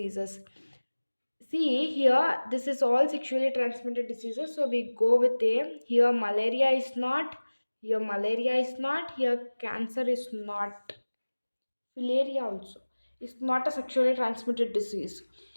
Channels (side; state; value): both; inverted; correlation -1.00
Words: See here, this is all sexually transmitted diseases. So we go with A. Here, malaria is not. Here, malaria is not. Here, cancer is not. Filaria also is not a sexually transmitted disease.